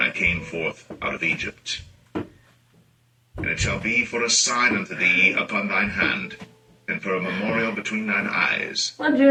I came forth out of Egypt. And it shall be for a sign unto thee upon thine hand, and for a memorial between thine eyes,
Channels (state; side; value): identical; both; correlation 1.00